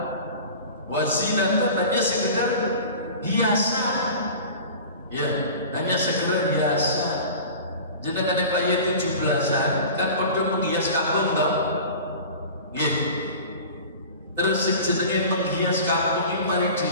Wazinatun hanya sekedar hiasan. Ya, hanya sekedar hiasan. Jadi kan kaya 17-an kan padha menghias kampung toh. Nggih. Terus sing jenenge menghias kampung iki mari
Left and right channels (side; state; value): both; inverted; correlation -0.37